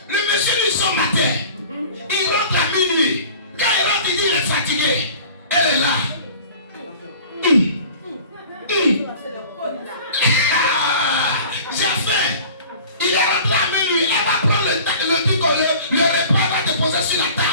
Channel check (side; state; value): both; inverted; correlation -0.43